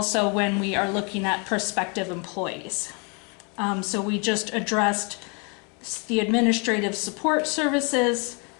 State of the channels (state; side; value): quieter; right; 34.1 dB